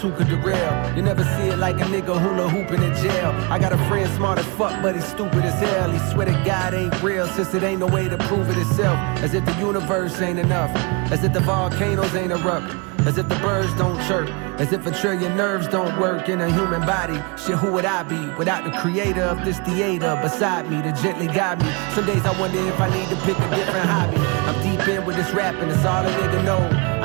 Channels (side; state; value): left; quieter; 30.5 dB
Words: who could derail. You never see it like a nigga hula hooping in jail. I got a friend smart as fuck, but he's stupid as hell. He swear to God ain't real, since it ain't no way to prove it itself. As if the universe ain't enough. As if the volcanoes ain't erupt. As if the birds don't chirp. As if a trillion nerves don't work in a human body. Shit, who would I be without the creator of this theater beside me to gently guide me? Some days I wonder if I need to pick a different hobby. I'm deep in with this rapping, it's all a nigga know.